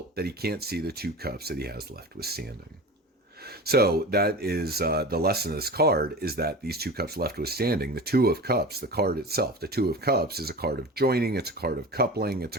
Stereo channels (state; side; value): normal; both; correlation 0.33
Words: that he can't see the 2 cups that he has left withstanding. So that is the lesson of this card, is that these 2 cups left withstanding, the 2 of Cups, the card itself, the 2 of Cups is a card of joining, it's a card of coupling, it's